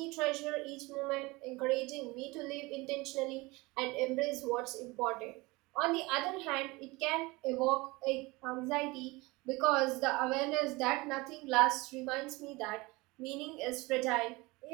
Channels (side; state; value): left; quieter; 23.2 dB